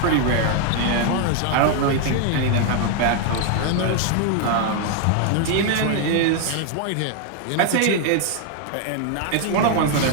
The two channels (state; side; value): different; both; correlation 0.00